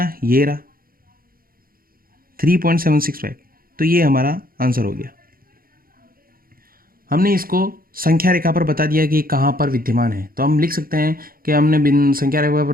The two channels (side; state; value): left; late; 0.42 ms